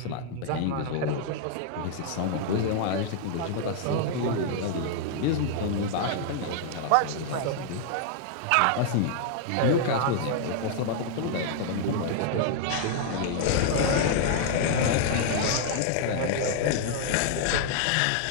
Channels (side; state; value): both; different; correlation -0.01